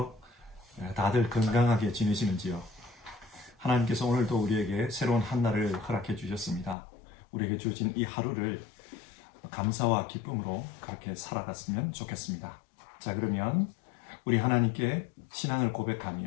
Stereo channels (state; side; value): drops out; right; at 6.8 s